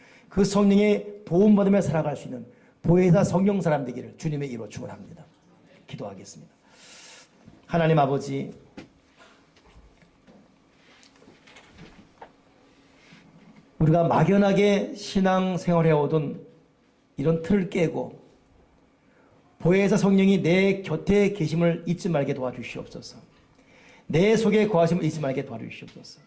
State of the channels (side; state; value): both; identical; correlation 1.00